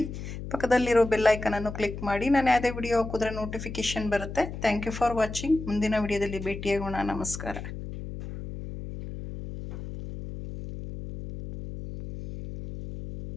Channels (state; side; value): noise; left; hum, 9 dB below the sound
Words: ಪಕ್ಕದಲ್ಲಿರೋ ಬೆಲ್ ಐಕನನ್ನು ಕ್ಲಿಕ್ ಮಾಡಿ. ನಾನು ಯಾವುದೇ ವಿಡಿಯೋ ಹಾಕಿದ್ರೆ ನೋಟಿಫಿಕೇಷನ್ ಬರುತ್ತೆ. Thank you for watching. ಮುಂದಿನ ವಿಡಿಯೋದಲ್ಲಿ ಭೇಟಿಯಾಗೋಣ. ನಮಸ್ಕಾರ.